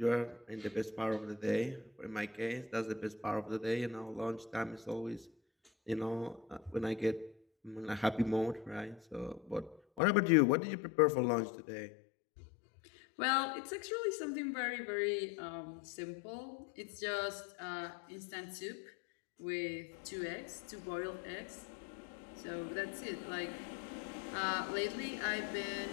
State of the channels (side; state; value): right; drops out; at 10.0 s